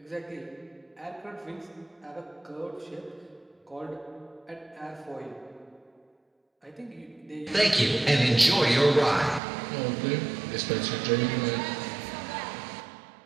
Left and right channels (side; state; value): left; drops out; at 9.4 s